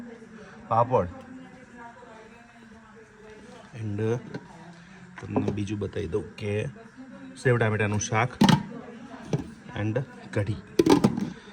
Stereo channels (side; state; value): both; identical; correlation 1.00